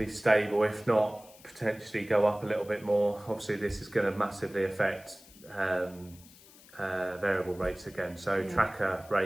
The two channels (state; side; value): noise; left; hiss, 23 dB below the sound